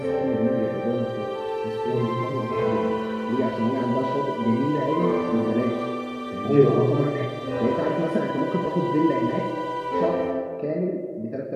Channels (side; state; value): both; identical; correlation 1.00